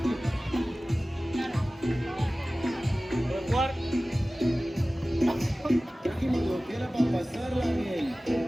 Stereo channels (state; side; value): normal; both; correlation 0.97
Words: ¿Puedes jugar? trajimos lo que era para pasarla bien.